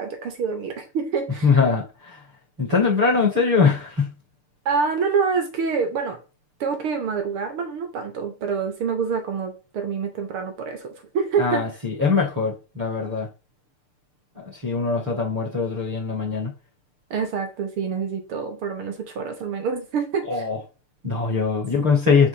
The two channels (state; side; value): late; left; 6.7 ms